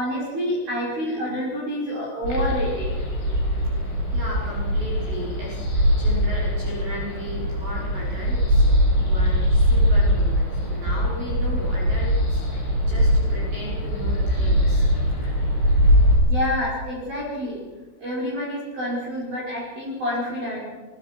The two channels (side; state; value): left; late; 16 ms